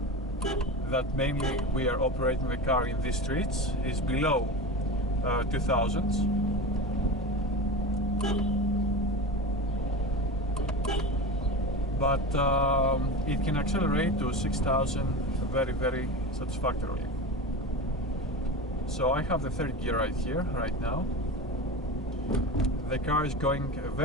that mainly we are operating the car in these streets, is below 2000s. But it can accelerate to 6000 very satisfactorily. So I have the third gear right here, right now. The car is going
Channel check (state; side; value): normal; both; correlation 0.27